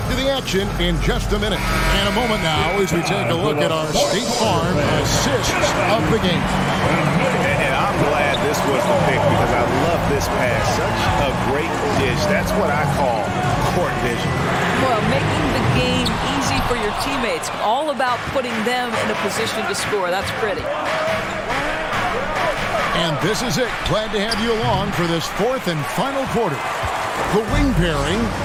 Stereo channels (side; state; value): both; identical; correlation 1.00